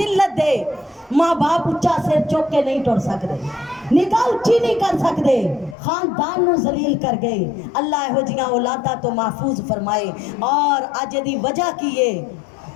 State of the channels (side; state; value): right; drops out; at 5.8 s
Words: दे। माँ बाप उच्चा सिर चुक के नहीं टुर सकते, निगाह उच्ची नहीं कर सकते, खानदान नू जलील कर गए। अल्लाह इहो जिहियां औलादा तो महफूज फरमाए। और अज दी वजह की है,